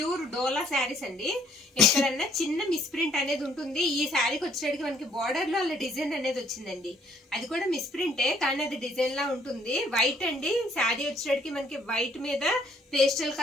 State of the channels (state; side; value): normal; both; correlation 0.64